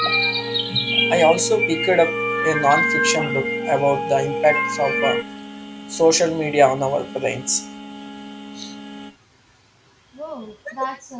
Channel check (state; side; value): identical; both; correlation 1.00